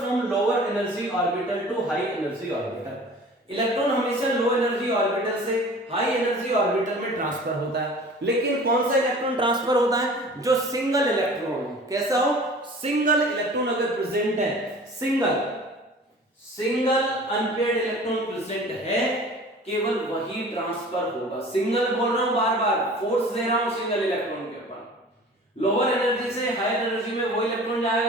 lower energy orbital to high energy orbital. Electron हमेशा लो एनर्जी ऑर्बिटल से हाई एनर्जी ऑर्बिटल में ट्रांसफर होता है, लेकिन कौन सा इलेक्ट्रॉन ट्रांसफर होता है, जो सिंगल इलेक्ट्रॉन हो। कैसा हो, सिंगल इलेक्ट्रॉन अगर प्रेजेंट है, सिंगल अनपेयर्ड इलेक्ट्रॉन प्रेजेंट है, केवल वही ट्रांसफर होगा। सिंगल बोल रहा हूं, बार बार फोर्स दे रहा हूं सिंगल इलेक्ट्रॉन के ऊपर। लोअर एनर्जी से हाई एनर्जी में वो इलेक्ट्रॉन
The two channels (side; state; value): both; normal; correlation 0.44